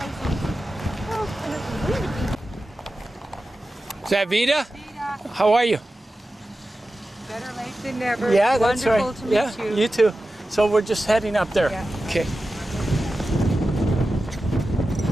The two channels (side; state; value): both; normal; correlation 0.94